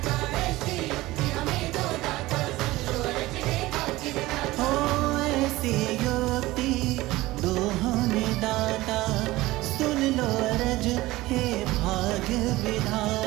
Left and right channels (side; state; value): left; quieter; 18.6 dB